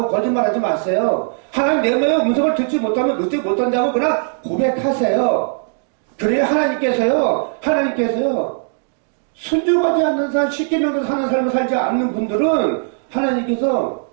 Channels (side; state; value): left; silent; digital silence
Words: 거짓말하지 마세요. 하나님 내 마의 음성을 듣지 못하면 듣지 못한다고 그냥 고백하세요. 그래야 하나님께서요 순종하지 않는 삶, 십계명대로 사는 삶을 살지 않는 분들은 하나님이